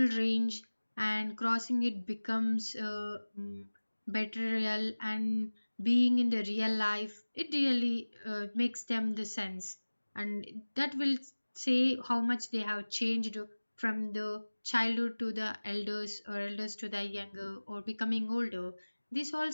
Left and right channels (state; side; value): inverted; both; correlation -1.00